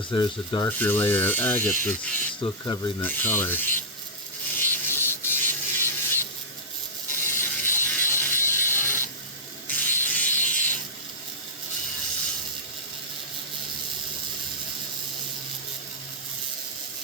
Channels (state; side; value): normal; both; correlation -0.12